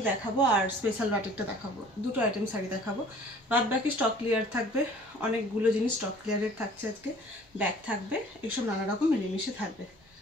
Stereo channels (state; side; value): normal; both; correlation 0.51